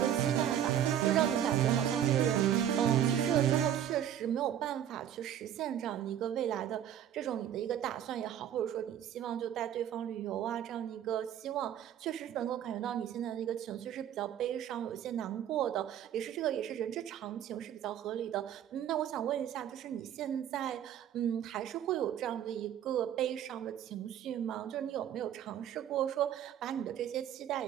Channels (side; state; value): left; quieter; 10.4 dB